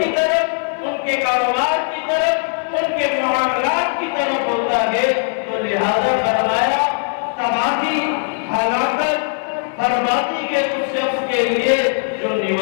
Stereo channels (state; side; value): silent; right; digital silence